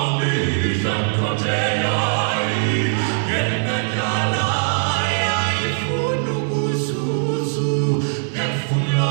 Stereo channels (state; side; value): silent; left; digital silence